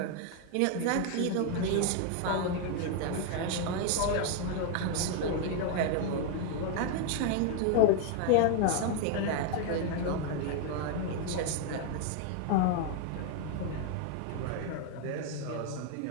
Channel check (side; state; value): both; different; correlation 0.01